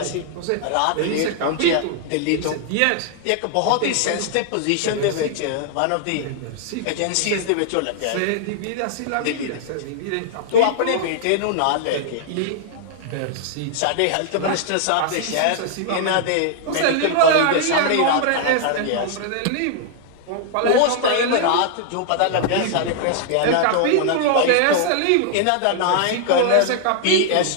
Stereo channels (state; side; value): different; both; correlation -0.01